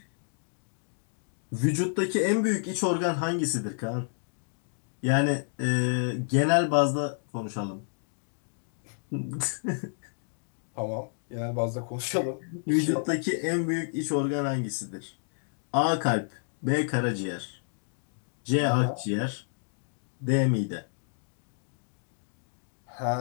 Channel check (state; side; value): silent; right; digital silence